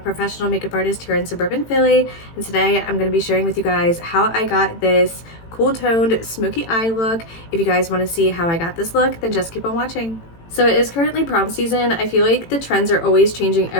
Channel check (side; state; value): right; late; 18 ms